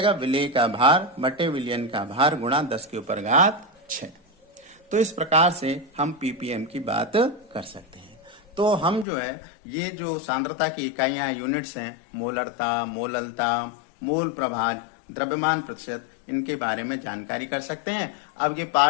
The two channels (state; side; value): drops out; right; at 9.1 s